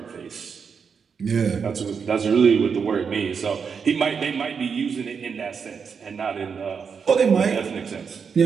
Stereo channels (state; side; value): quieter; left; 6.2 dB